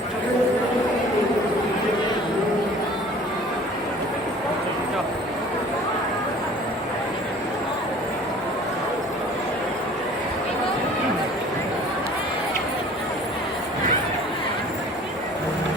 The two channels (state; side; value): normal; both; correlation 0.48